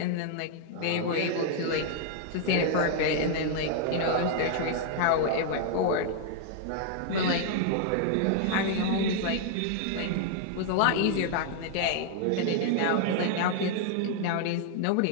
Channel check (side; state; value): both; different; correlation 0.00